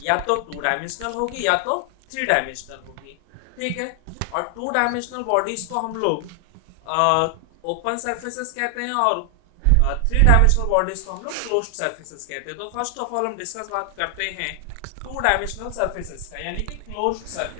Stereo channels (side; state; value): both; different; correlation 0.00